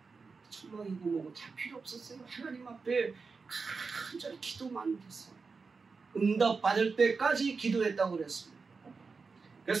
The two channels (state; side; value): quieter; left; 4.7 dB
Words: 천막이고 뭐고 다 필요 없었어요. 하나님 앞에 간절히 기도만 했어요. 응답받을 때까지 기도했다고 그랬습니다.